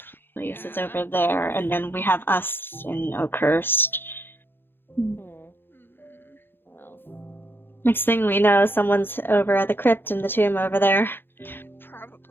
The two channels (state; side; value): late; right; 0.10 ms